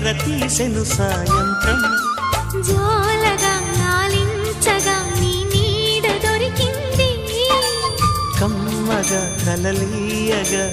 తీసెను సాయంత్రం జోలగా లాలించగా నీ నీడ దొరికింది కమ్మగా కలలీయగా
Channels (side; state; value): both; identical; correlation 1.00